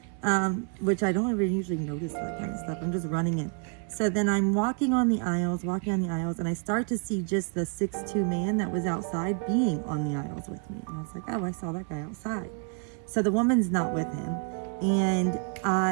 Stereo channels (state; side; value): quieter; left; 38.3 dB